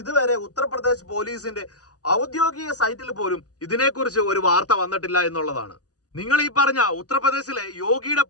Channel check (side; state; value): right; late; 0.67 ms